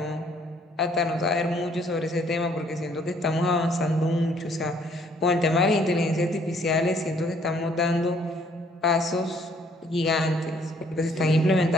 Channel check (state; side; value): normal; both; correlation 0.63